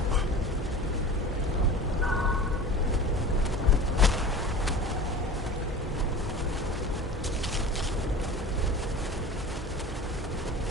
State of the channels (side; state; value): both; normal; correlation 0.35